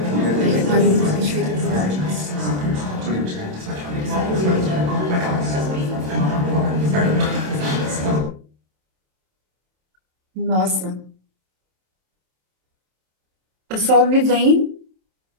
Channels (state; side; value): late; left; 27 ms